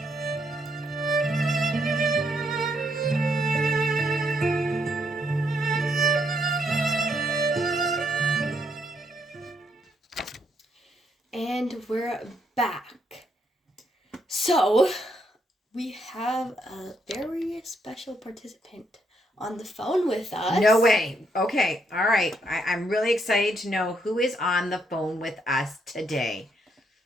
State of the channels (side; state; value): both; normal; correlation 0.75